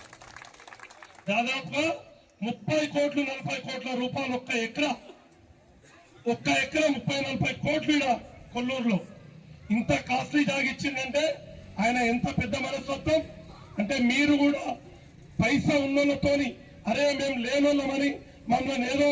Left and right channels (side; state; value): both; identical; correlation 1.00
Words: దాదాపుగా 30 కోట్లు 40 కోట్ల రూపాయలు ఒక్క ఎకరా 30-40 కోట్లు ఈడ కొల్లూరులో. ఇంత కాస్ట్లీ జాగా ఇచ్చిందంటే ఆయన ఎంత పెద్ద మనస్తత్వం అంటే, మీరు కూడా పైసా ఉన్నోళ్ళతోని అరే మేము లేనోళ్ళమని మమ్మల్ని ఏదో